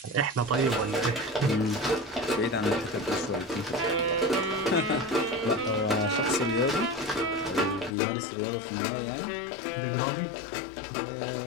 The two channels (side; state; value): right; drops out; at 8.0 s